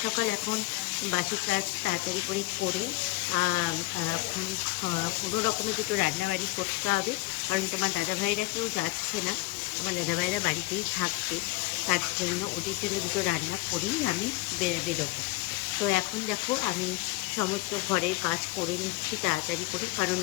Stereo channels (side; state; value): right; quieter; 20.9 dB